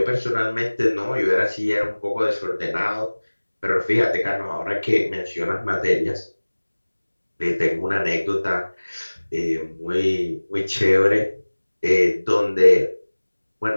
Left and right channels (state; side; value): inverted; both; correlation -1.00